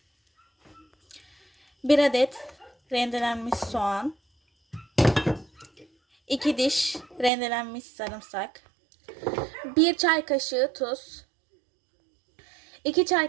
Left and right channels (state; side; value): drops out; left; at 7.3 s